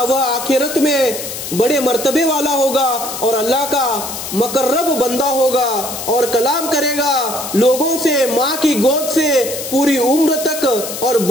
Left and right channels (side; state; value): left; noise; hiss, 7 dB below the sound